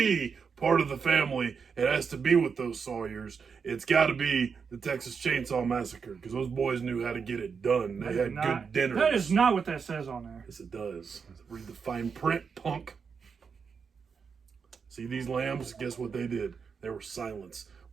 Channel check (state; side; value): quieter; left; 5.9 dB